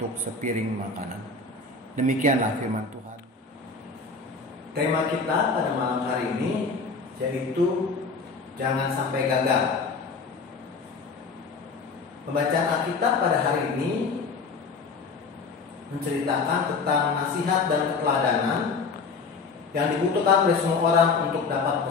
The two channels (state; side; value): quieter; right; 4.4 dB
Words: sepiring makanan. Demikianlah firman Tuhan. Tema kita pada malam hari ini yaitu jangan sampai gagal. Pembacaan Alkitab pada hari ini menceritakan tentang nasihat dan keteladanan yang dibutuhkan oleh semua orang untuk dapat